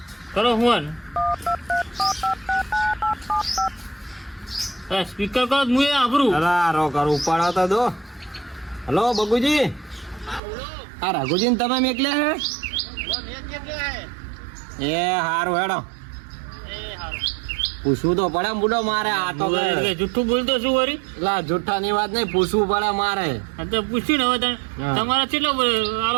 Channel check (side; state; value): left; drops out; at 10.4 s